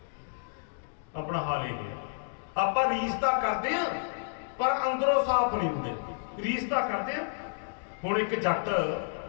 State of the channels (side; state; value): right; silent; digital silence